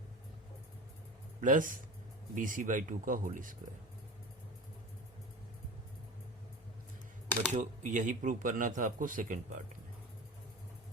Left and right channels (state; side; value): normal; both; correlation 0.31